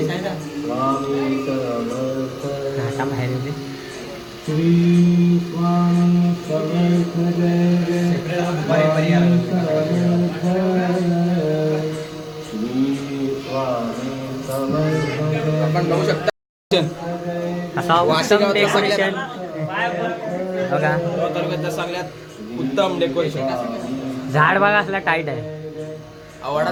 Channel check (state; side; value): identical; both; correlation 1.00